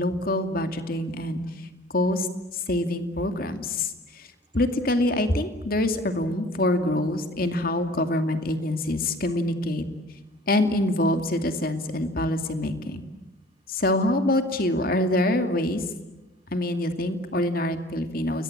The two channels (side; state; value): both; normal; correlation 0.49